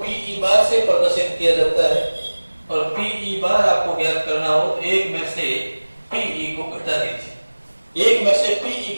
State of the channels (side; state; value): both; inverted; correlation -1.00